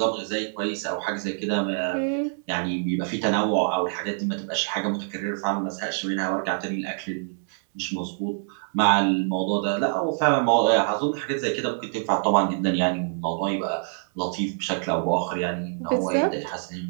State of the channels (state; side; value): silent; left; digital silence